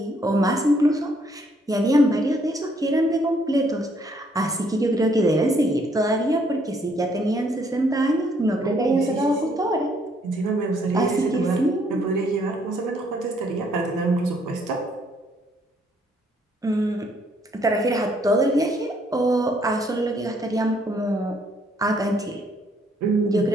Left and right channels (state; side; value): normal; both; correlation 0.68